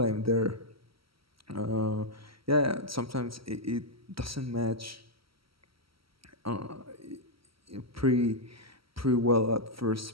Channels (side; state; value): left; late; 0.75 ms